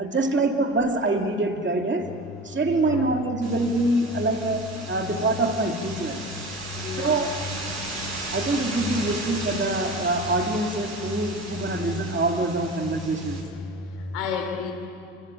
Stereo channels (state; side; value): normal; both; correlation 0.33